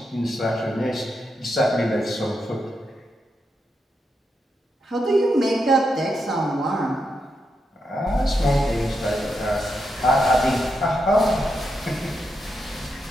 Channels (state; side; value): normal; both; correlation 0.84